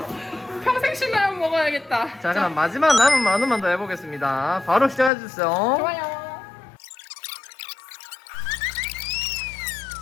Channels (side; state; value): right; drops out; at 5.1 s